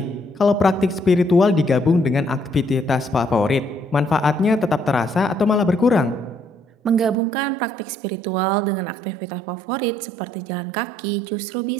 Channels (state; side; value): drops out; left; at 7.2 s